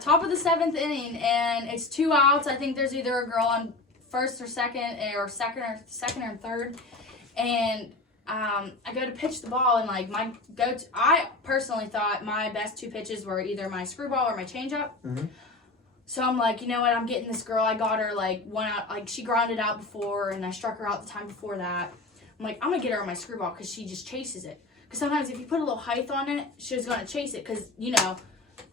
top of the 7th inning, and it's 2 outs. I think there's either a girl on first or second or third, and I go to pitch the ball, and like I personally thought my best 2 pitches were either my screwball or my changeup. Mm-hmm. So I'm like, you know what? I'm getting this girl. I got her like 1 out. Like she grounded out before, and I struck her out the time before that. I'm like, I'm gonna get her on my screwball because she just chases it. Because sometimes if you put a little height on it, she's gonna chase it. Because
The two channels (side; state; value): right; quieter; 3.2 dB